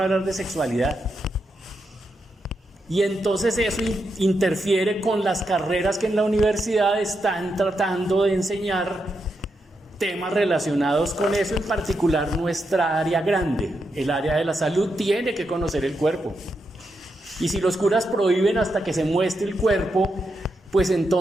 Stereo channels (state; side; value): normal; both; correlation 0.84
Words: hablar de sexualidad. Y entonces eso interfiere con las carreras que en la universidad están tratando de enseñar temas relacionados con eso, en particular nuestra área grande, el área de la salud, tiene que conocer el cuerpo. Y si los curas prohíben hasta que se muestre el cuerpo, pues